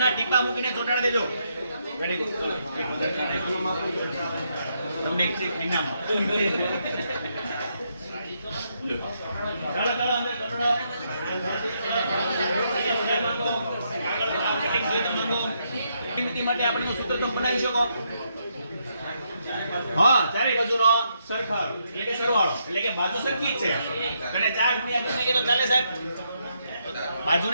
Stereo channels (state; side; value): inverted; both; correlation -0.78